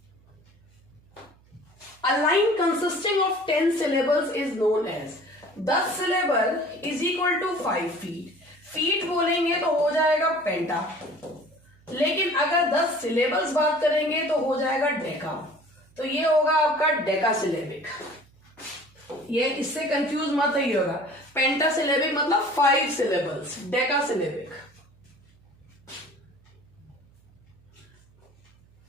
A line consisting of 10 syllables is known as. 10 syllable is equal to 5 feet. Feet बोलेंगे तो हो जाएगा पेंटा, लेकिन अगर 10 syllables बात करेंगे तो हो जाएगा डेका. तो ये होगा आपका डेका सिलेबिक. ये इससे कंफ्यूज मत होइएगा. पेंटा सिलेबिक मतलब 5 syllables, Deka syllabic.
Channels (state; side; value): noise; right; hum, 30 dB below the sound